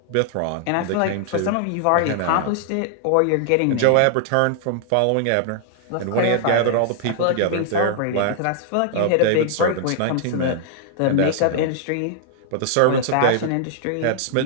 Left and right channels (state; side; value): different; both; correlation -0.01